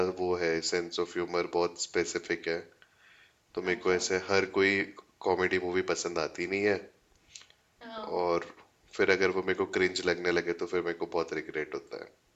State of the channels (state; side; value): identical; both; correlation 1.00